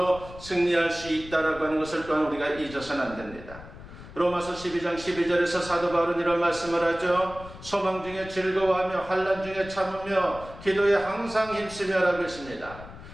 승리할 수 있다라고 하는 것을 또한 우리가 잊어서는 안 됩니다. 로마서 12장 12절에서 사도 바울은 이런 말씀을 하죠. 소망 중에 즐거워하며 환난 중에 참으며 기도에 항상 힘쓰며라고 했습니다.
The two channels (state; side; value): noise; left; rumble, 16 dB below the sound